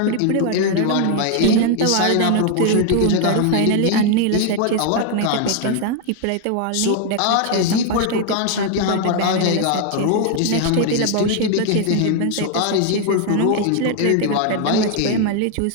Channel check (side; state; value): both; different; correlation 0.00